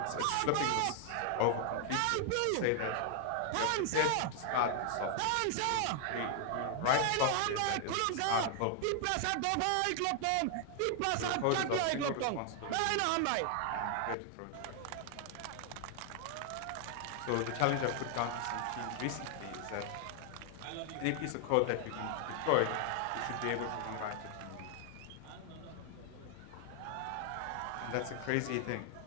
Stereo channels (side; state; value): both; different; correlation 0.00